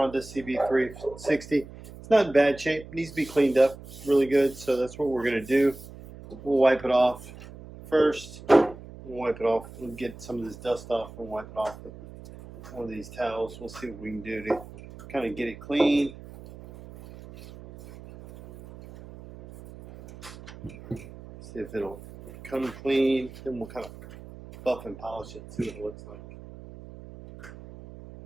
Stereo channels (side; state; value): right; noise; hum, 16 dB below the sound